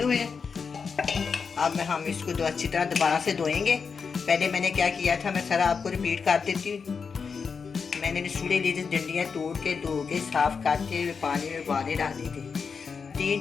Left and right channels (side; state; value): right; quieter; 5.6 dB